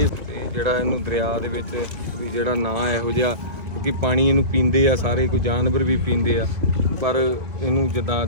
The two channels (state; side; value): late; left; 2.0 ms